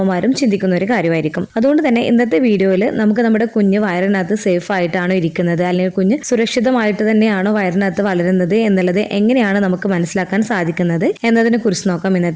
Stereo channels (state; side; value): identical; both; correlation 1.00